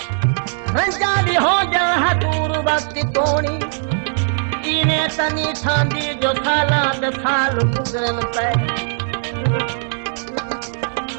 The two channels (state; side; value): silent; left; digital silence